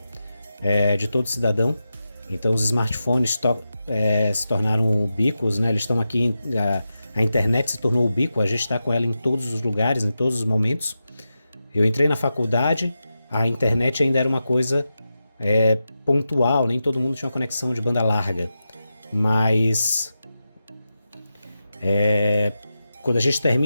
de todo cidadão. Então os smartphones se tornaram ubíquos, né? Eles estão aqui, a internet se tornou ubíqua, a gente está com ela em todos os lugares, em todos os momentos. Eu entrei na faculdade, a internet ainda era uma coisa pontual, nem todo mundo tinha uma conexão de banda larga, mas quando a gente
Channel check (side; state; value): both; inverted; correlation -0.90